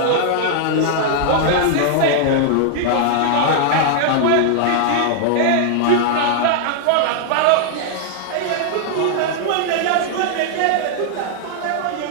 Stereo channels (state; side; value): different; both; correlation -0.01